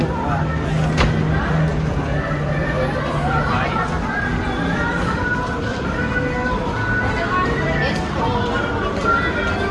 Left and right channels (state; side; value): identical; both; correlation 1.00